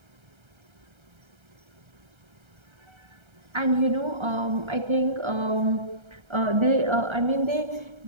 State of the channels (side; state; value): left; late; 1.3 ms